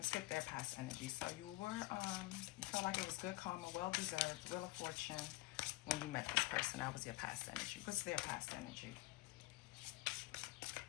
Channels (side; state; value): right; quieter; 20.3 dB